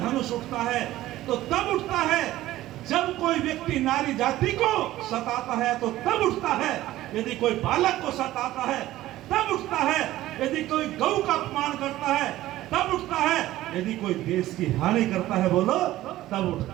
उठता है तो तब उठता है जब कोई व्यक्ति नारी जाति को सताता है, तो तब उठता है। यदि कोई बालक को सताता है तब उठता है। यदि कोई गौ का अपमान करता है तब उठता है। यदि कोई देश की हानि करता है, बोलो, तब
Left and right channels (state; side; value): quieter; left; 15.4 dB